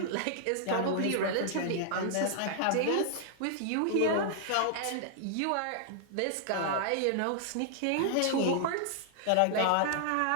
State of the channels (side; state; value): both; different; correlation -0.01